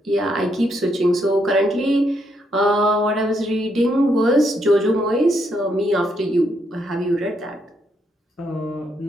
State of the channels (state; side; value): normal; both; correlation 0.76